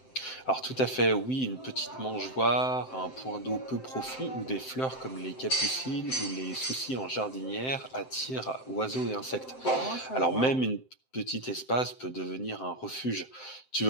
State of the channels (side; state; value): right; late; 7.7 ms